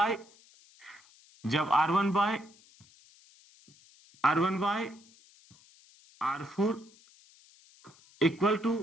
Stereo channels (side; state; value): left; noise; hiss, 27 dB below the sound